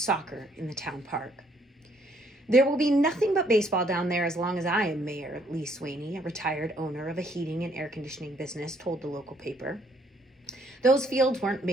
in the town park. There will be nothing but baseball down there as long as I am mayor, Lee Swaney, a retired owner of a heating and air conditioning business, told the local paper. Those fields weren't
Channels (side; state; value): both; normal; correlation 0.66